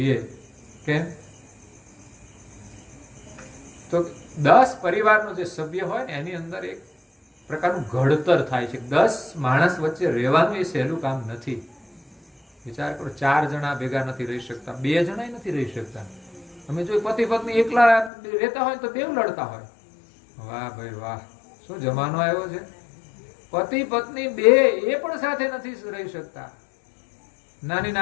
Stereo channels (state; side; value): drops out; right; at 18.1 s